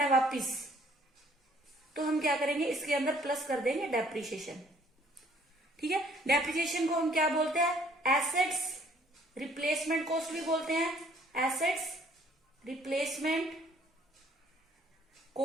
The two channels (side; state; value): both; normal; correlation 0.61